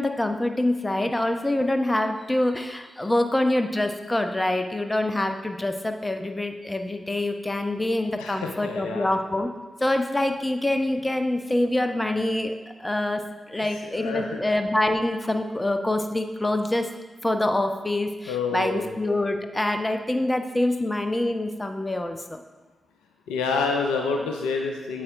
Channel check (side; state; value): both; normal; correlation 0.93